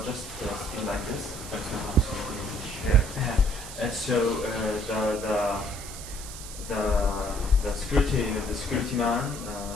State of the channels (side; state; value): right; noise; hiss, 12 dB below the sound